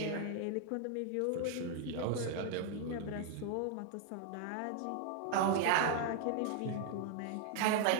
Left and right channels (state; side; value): different; both; correlation 0.00